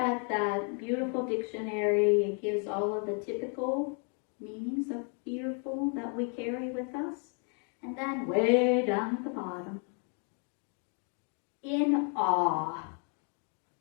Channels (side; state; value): right; quieter; 38.9 dB